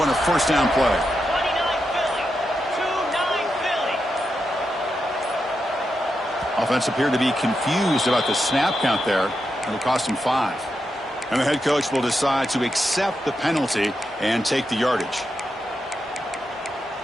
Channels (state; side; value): normal; both; correlation 0.86